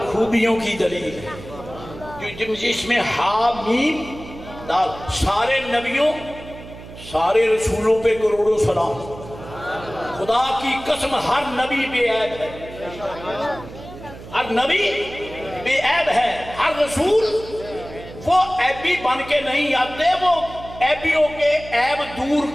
خوبیوں کی دلیل ہے جس میں حامیم دال، سارے نبیوں سارے رسولوں پہ کروڑوں سلام، خدا کی قسم ہر نبی بے عیب ہے، ہر نبی بے عیب ہے، ہر رسول وہ عیبی بن کے نہیں آتے، وہ عیبیوں کے عیب دور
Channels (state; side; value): noise; right; hum, 15 dB below the sound